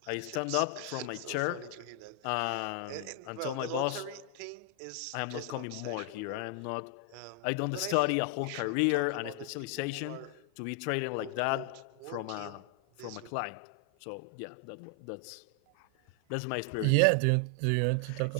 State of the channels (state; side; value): different; both; correlation 0.00